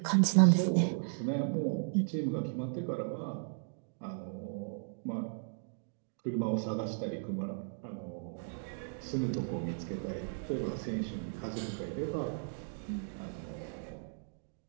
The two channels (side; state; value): left; silent; digital silence